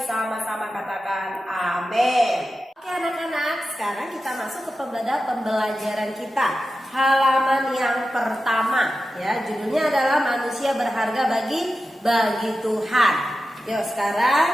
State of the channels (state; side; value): normal; both; correlation 0.92